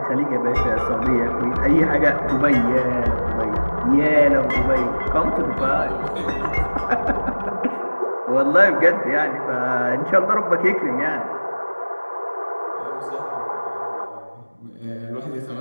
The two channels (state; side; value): inverted; both; correlation -1.00